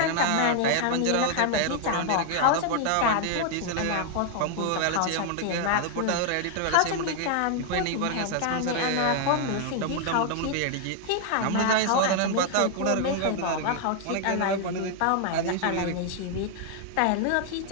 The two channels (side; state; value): both; different; correlation 0.00